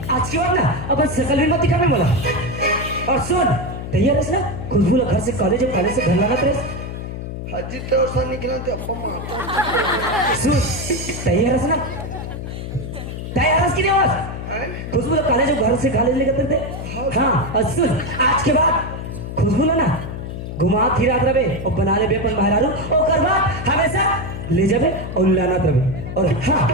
आज की बात ना अब सकल भी मत दिखावे बोला और सुन तैयार है ना खुशबू घर से कॉलेज और कॉलेज से घर लाना तेरे हाजी तो सा निकला तो अब्बा मारता सुन तैयार है ना तैयार है कि नहीं आवाज खुशबू कॉलेज और घर से कॉलेज लेकर थे हाँ और सुन आज के बाद खुशबू ना घुमा फिरात रहे और बना ले अपन बाहर और कर बाद हमेशा ले जावे और लाना रहे और हाँ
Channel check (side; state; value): left; noise; hum, 7 dB below the sound